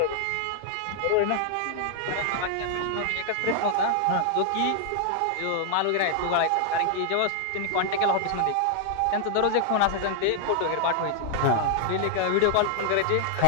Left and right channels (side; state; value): both; different; correlation 0.00